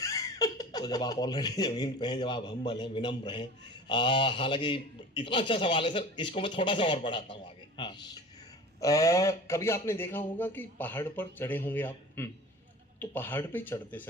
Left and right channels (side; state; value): both; normal; correlation 0.38